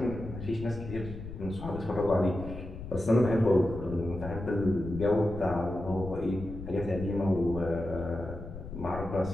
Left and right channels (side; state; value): left; noise; rumble, 10 dB below the sound